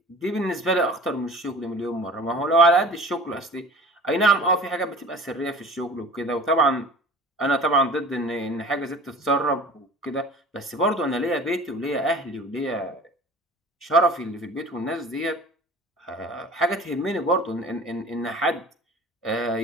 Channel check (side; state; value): both; normal; correlation 0.43